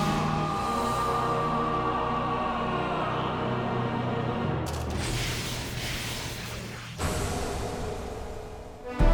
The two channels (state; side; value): identical; both; correlation 1.00